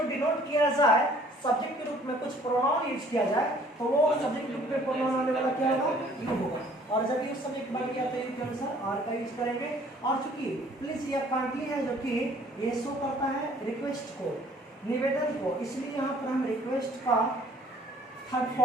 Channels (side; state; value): both; normal; correlation 0.57